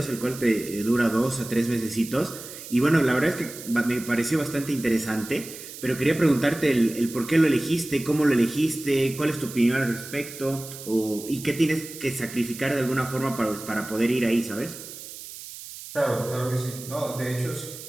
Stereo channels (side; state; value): right; noise; hiss, 13 dB below the sound